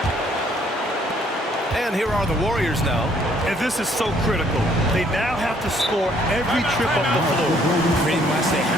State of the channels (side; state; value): both; normal; correlation 0.64